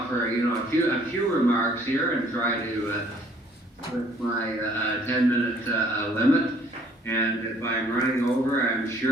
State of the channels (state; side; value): normal; both; correlation 0.59